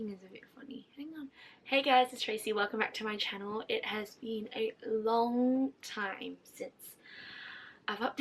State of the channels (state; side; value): identical; both; correlation 1.00